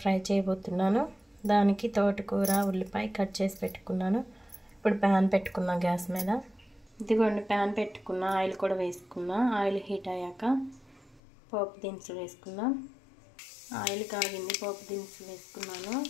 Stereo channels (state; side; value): drops out; right; at 11.2 s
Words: ఫ్రై చేయబోతున్నాను. దానికి తోటకూర ఉల్లిపాయ కట్ చేసి పెట్టుకున్నాను. ఇప్పుడు ప్యాన్ పెట్టుకున్నా గ్యాస్ మీద. ఇదిగోండి ప్యాన్ పెట్టుకున్నా, ఆయిల్ కూడా వేసుకున్నా. ఆయిల్ హీట్ అయ్యాక పోపు దినుసులు వేసుకుందాం. ఆయిల్ కాగింది, పోపు దినుసులు వేసుకున్నాను.